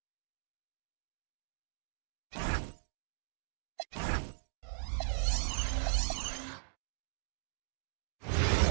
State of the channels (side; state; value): left; silent; digital silence